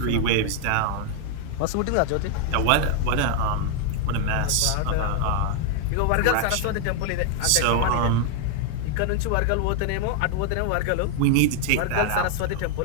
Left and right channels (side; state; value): both; different; correlation 0.00